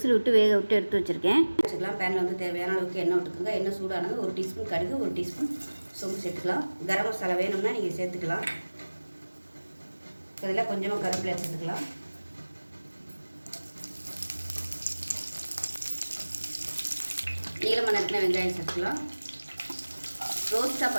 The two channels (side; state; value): both; inverted; correlation -1.00